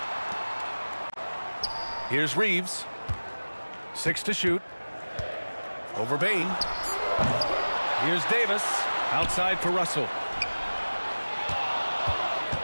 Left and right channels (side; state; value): both; inverted; correlation -1.00